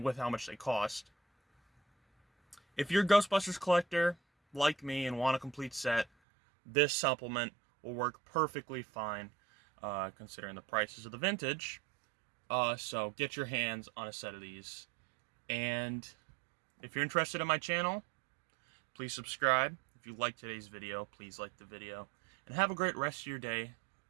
with how much they cost. If you're a Ghostbusters collector like me and want a complete set, this supplement will work perfectly fine, considering the prices of the vintage. So get your hands on a set of these. And if you're interested in my channel, please subscribe. If you liked today's video, please like the video. And have a great rest of your day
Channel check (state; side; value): drops out; left; at 6.1 s